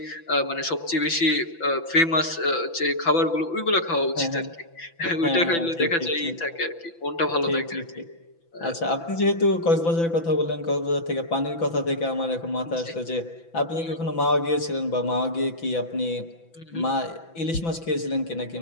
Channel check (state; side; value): late; right; 6.0 ms